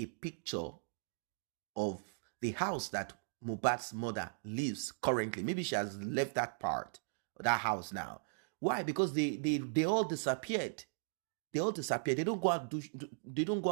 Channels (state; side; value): silent; left; digital silence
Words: picture of the house that Mohbad's mother lives currently. Maybe she has left that part, that house now. Why? Because they all disappeared. They all disappeared. They don't go out